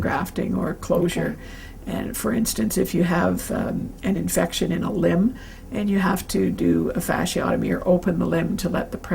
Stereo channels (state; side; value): identical; both; correlation 1.00